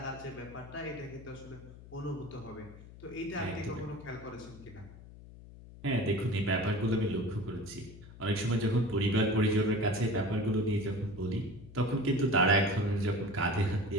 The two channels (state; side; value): noise; left; hum, 17 dB below the sound